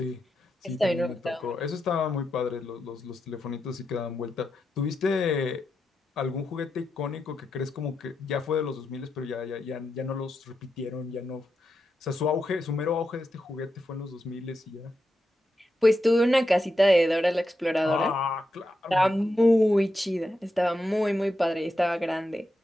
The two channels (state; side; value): normal; both; correlation 0.86